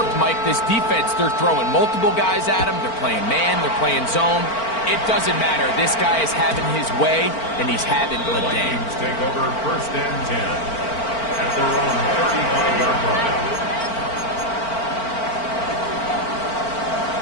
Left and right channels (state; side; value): late; right; 4.4 ms